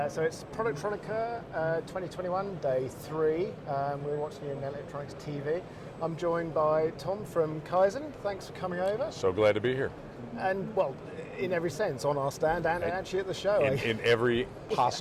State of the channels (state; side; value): identical; both; correlation 1.00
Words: So it's Productronica 2021, day 3. We're watching it in Electronics TV. I'm joined by Tom from Kyzen. Thanks for coming over. So glad to be here. And, well, in every sense, on our stand and actually at the show. In every